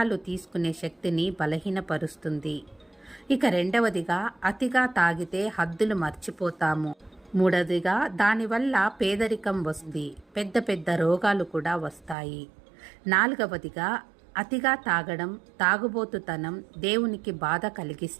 తీసుకునే శక్తిని బలహీనపరుస్తుంది. ఇక రెండవదిగా అతిగా తాగితే హద్దులు మర్చిపోతాము. మూడవదిగా దానివల్ల పేదరికం వస్తుంది, పెద్ద పెద్ద రోగాలు కూడా వస్తాయి. నాలుగవదిగా అతిగా తాగడం, తాగుబోతుతనం దేవునికి బాధ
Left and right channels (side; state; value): left; drops out; at 12.2 s